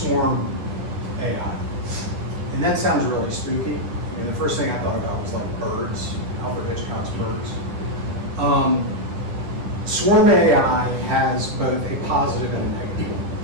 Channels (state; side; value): late; left; 10 ms